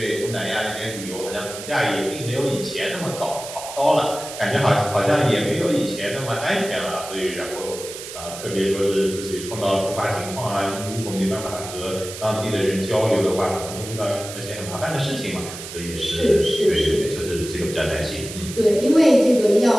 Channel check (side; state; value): right; noise; hiss, 11 dB below the sound